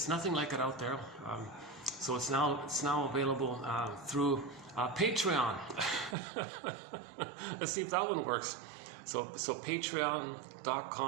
nothing like it out there. So it's now available through Patreon. Let's see if that one works. So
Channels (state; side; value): drops out; left; at 6.2 s